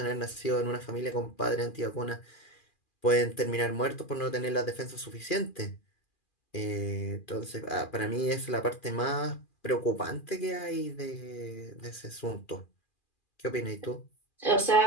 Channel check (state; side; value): late; right; 2.4 ms